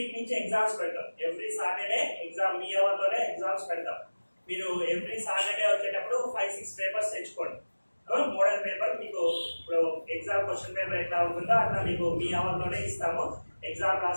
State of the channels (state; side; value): inverted; both; correlation -1.00